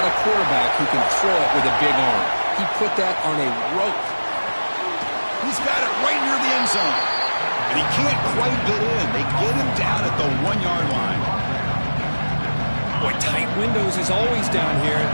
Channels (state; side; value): inverted; both; correlation -1.00